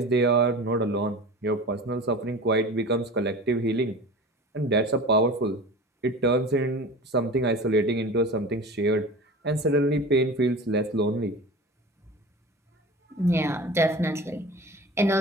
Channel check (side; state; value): both; normal; correlation 0.35